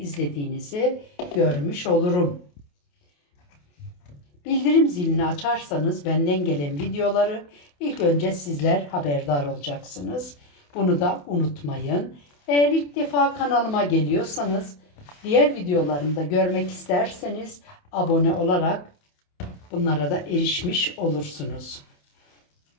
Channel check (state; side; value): late; right; 28 ms